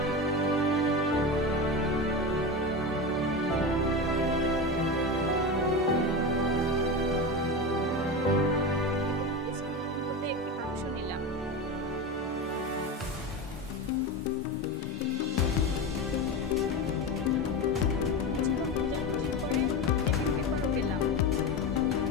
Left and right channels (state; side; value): normal; both; correlation 0.21